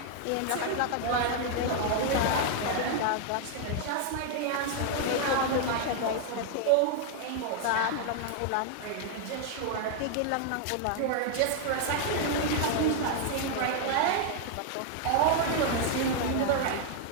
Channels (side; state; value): both; different; correlation 0.00